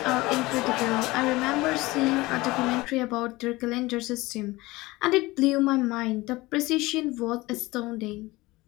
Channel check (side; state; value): right; quieter; 20.7 dB